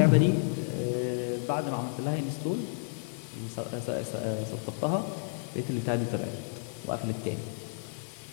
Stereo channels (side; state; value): right; silent; digital silence